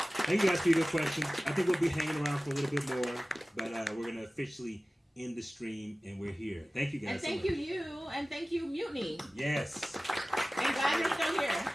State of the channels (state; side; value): normal; both; correlation 0.97